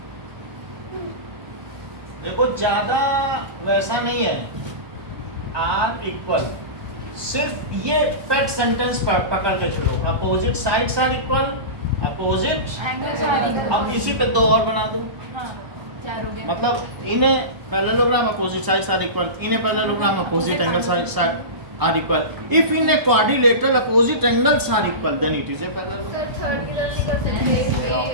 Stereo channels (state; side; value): late; left; 1.2 ms